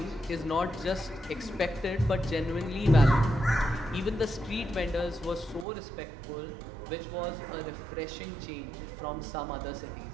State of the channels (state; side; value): drops out; left; at 5.7 s